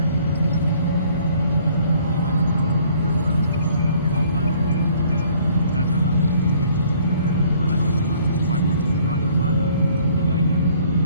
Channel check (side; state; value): both; inverted; correlation -0.59